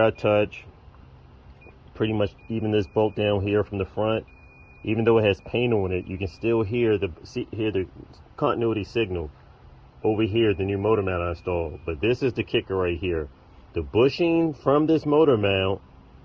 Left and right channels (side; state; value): both; identical; correlation 1.00